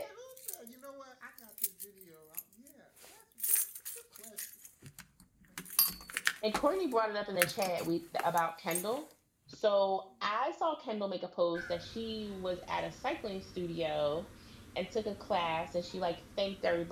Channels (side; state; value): both; identical; correlation 1.00